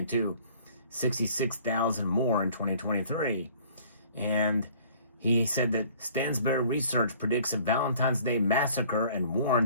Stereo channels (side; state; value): both; inverted; correlation -0.53